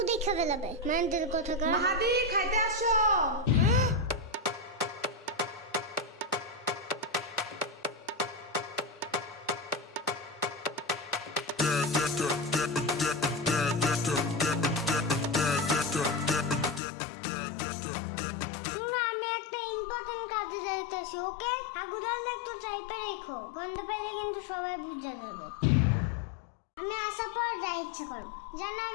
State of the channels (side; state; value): right; drops out; at 16.8 s